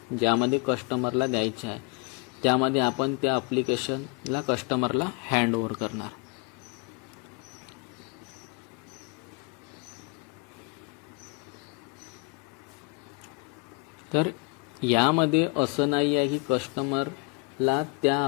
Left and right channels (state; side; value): quieter; right; 30.7 dB